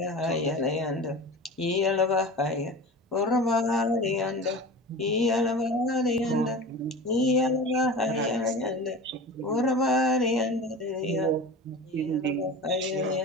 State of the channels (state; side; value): normal; both; correlation 0.33